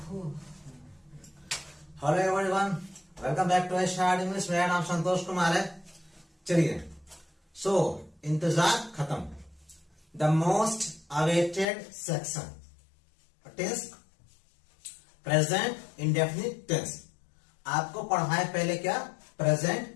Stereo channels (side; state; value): right; drops out; at 11.7 s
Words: Hello everyone, welcome back to start English. मेरा नाम संतोष कुमार है। चलिए, सो इंतजार खत्म। The most awaited section, tense, present indefinite tense. आपको पढ़ाए पहले क्या,